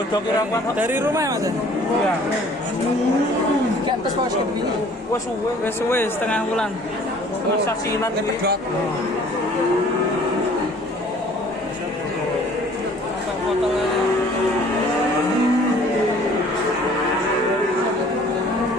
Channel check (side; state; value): both; normal; correlation 0.53